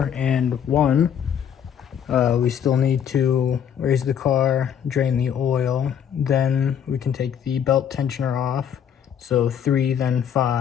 and 1. we still need to raise the car, drain the oil, then we can take the belt tensioner off. So 3, then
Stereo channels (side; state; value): right; quieter; 8.5 dB